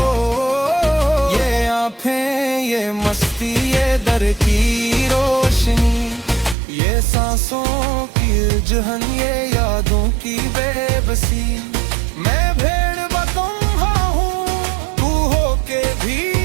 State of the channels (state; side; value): drops out; left; at 6.6 s